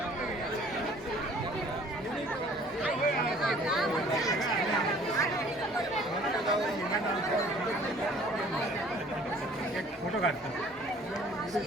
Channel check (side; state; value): both; normal; correlation 0.54